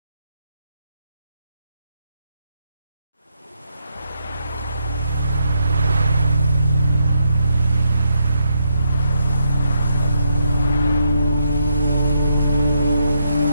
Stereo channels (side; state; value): both; inverted; correlation -0.79